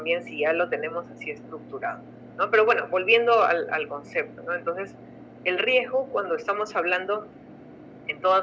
si ya lo tenemos así estructurado, ¿no? Pero bueno, volviendo al concepto, ¿no? Entonces, el riesgo, cuando estamos hablando en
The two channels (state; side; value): identical; both; correlation 1.00